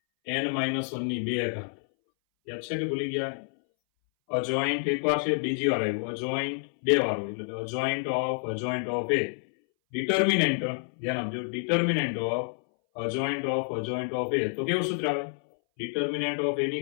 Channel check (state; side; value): silent; right; 59 dB below the other